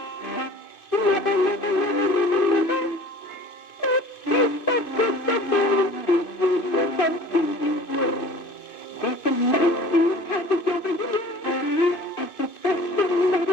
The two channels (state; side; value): late; right; 2.5 ms